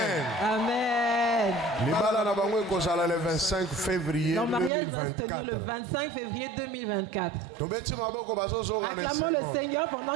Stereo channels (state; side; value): drops out; left; at 4.7 s